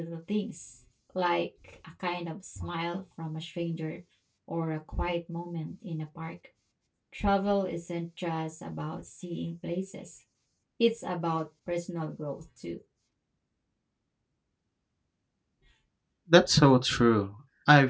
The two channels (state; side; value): identical; both; correlation 1.00